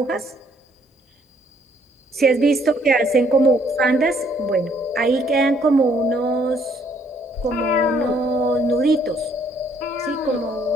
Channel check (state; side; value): normal; both; correlation 0.66